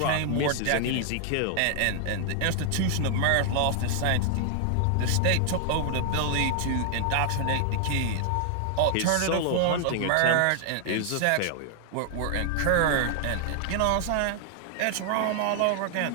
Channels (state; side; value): different; both; correlation 0.00